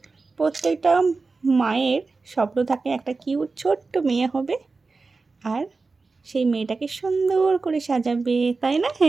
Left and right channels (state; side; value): quieter; left; 4.0 dB